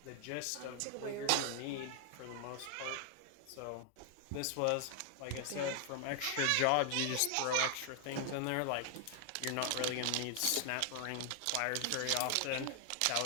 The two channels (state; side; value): different; both; correlation 0.00